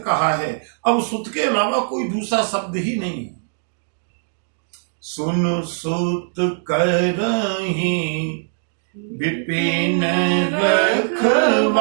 कहा है, अब सुत के अलावा कोई दूसरा शब्द ही नहीं है। सुन सुत करहि विपिन रखवारी,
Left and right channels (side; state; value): left; silent; digital silence